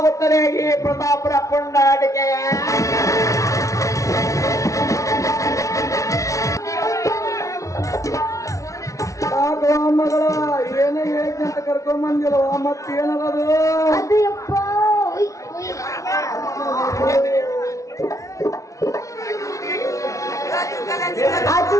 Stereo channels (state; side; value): late; right; 0.15 ms